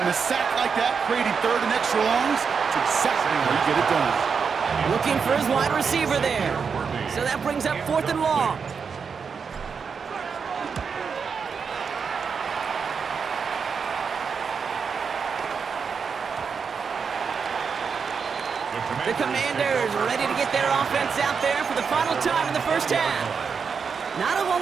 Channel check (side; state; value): left; quieter; 5.9 dB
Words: a sack like that, creating 3rd and extra longs, it's exactly how you get it done. Looking for his wide receiver there. So that brings up 4th and long. The Commanders ready to get their offense out there for the final time in the 1st half. Not a whole